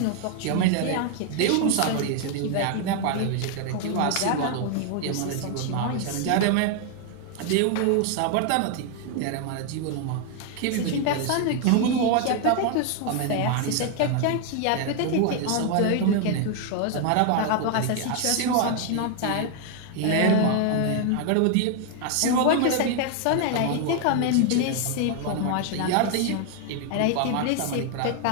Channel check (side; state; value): both; different; correlation 0.00